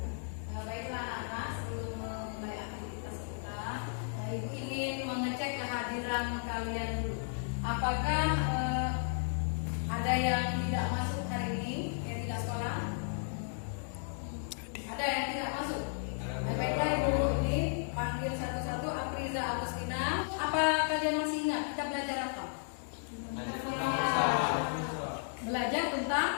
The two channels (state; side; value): silent; right; digital silence